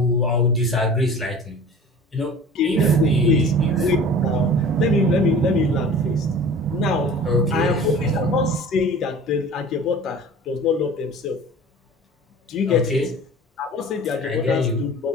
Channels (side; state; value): both; normal; correlation 0.41